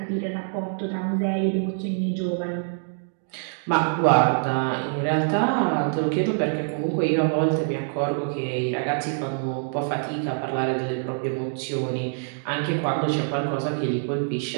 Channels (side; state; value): left; silent; digital silence